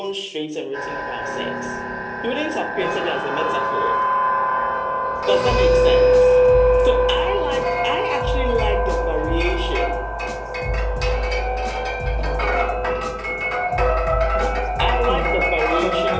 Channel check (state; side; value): identical; both; correlation 1.00